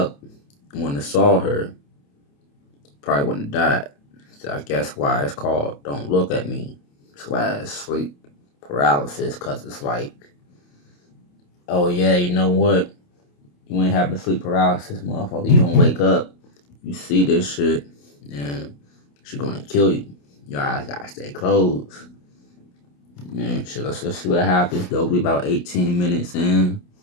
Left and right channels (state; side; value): late; right; 28 ms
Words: and wouldn't have saw her, probably wouldn't have died. So I guess why it's called "Don't Look at Me" / sleep paralysis, cause it's like, oh yeah, you know what? You ain't having sleep paralysis, motherfucker. You don't wake up, you see this shit, and she's gonna kill you. Your eyes gotta stay closed. Man, shit, let's just see what happens, though. We about 18 minutes in,